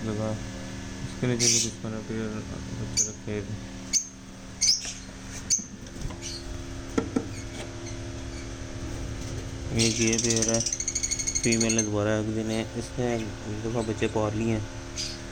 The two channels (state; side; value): identical; both; correlation 1.00